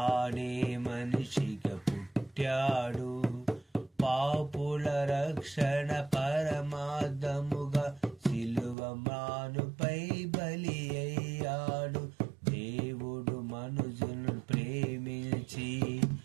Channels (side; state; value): left; drops out; at 8.8 s